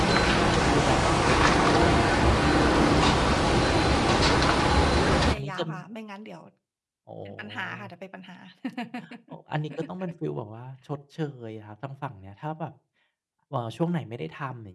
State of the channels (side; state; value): both; identical; correlation 1.00